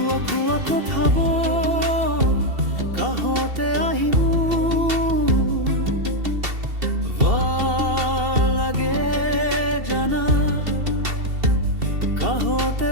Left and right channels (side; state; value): left; late; 2.7 ms